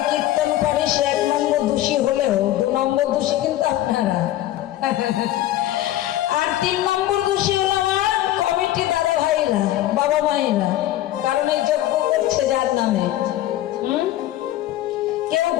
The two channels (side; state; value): right; quieter; 14.1 dB